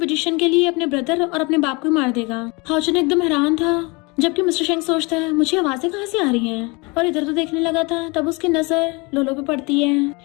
के लिए अपने ब्रदर और अपने बाप को ही मार देगा। हाउचन एकदम हैरान था जबकि मिस्टर शेंग सोचता है मुझे आवाजें कहाँ से आ रही हैं और इधर तो देखने लगा था। तब उसकी नजर लोलो पे पड़ती है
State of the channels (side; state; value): right; quieter; 27.5 dB